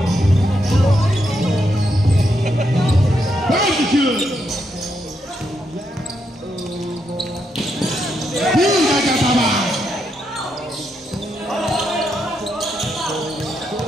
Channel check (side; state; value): both; normal; correlation 0.80